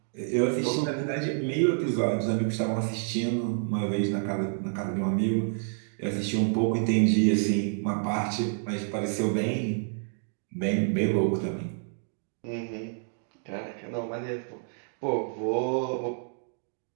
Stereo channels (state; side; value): silent; left; digital silence